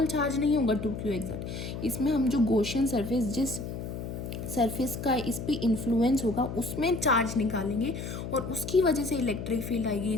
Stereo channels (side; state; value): left; noise; hum, 7 dB below the sound